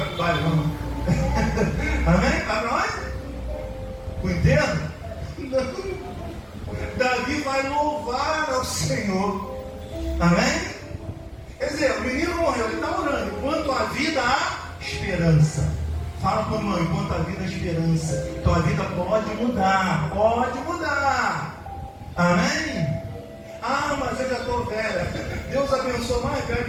para o baile, não? Amém? Vai para onde? O enterro? Não. Davi vai louvar ao Senhor, amém? Quer dizer, o menino morreu, ele está orando. Quanto à vida, há esperança. Fala para o irmão, enquanto a vida é esperança, tua vida pode mudar, pode mudar. Amém? Ah, mas eu já estou velha. Deus abençoa mais velho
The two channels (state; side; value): identical; both; correlation 1.00